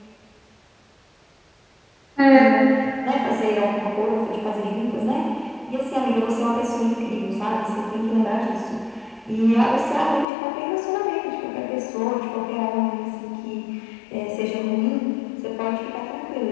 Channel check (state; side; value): drops out; right; at 10.2 s